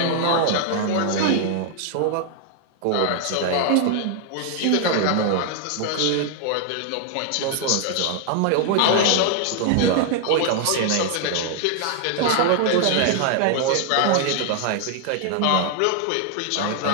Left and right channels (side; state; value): both; different; correlation 0.00